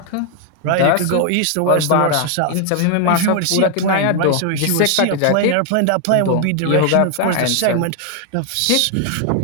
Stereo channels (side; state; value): both; different; correlation 0.00